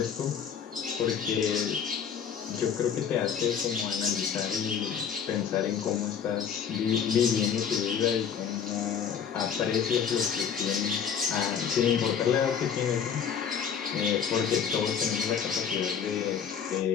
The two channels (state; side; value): quieter; right; 7.6 dB